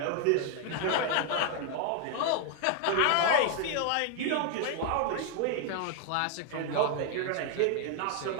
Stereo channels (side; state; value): both; different; correlation 0.00